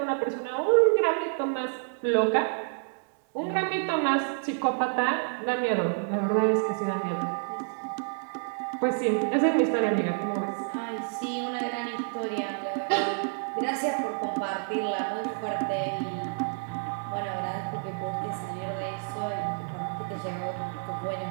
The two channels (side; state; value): left; silent; 59 dB below the other